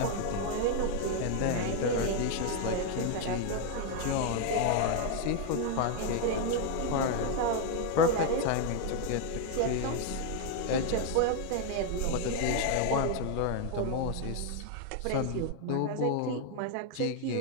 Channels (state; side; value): different; both; correlation 0.00